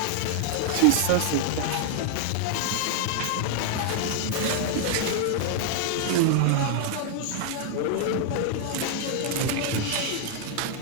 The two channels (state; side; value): different; both; correlation 0.00